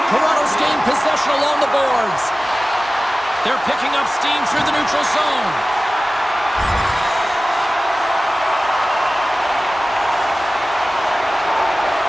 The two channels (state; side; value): normal; both; correlation 0.97